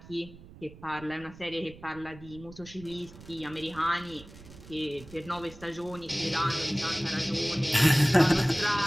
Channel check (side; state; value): right; noise; rumble, 19 dB below the sound